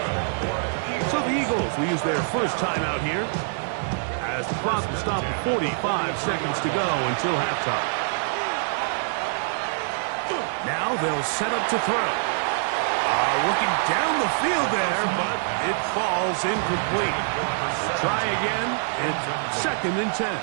So the Eagles will use their first timeout here as the clock will stop at 45 seconds to go until halftime. Now they'll set up to throw. Looking down the field there, but it falls incomplete. Try again. It's second and 10.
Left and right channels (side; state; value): left; silent; digital silence